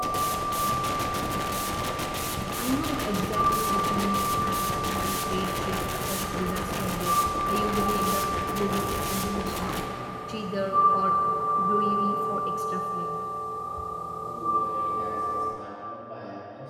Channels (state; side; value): identical; both; correlation 1.00